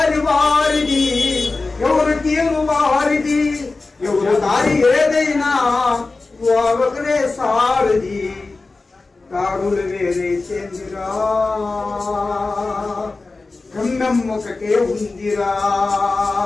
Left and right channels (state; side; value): quieter; right; 3.6 dB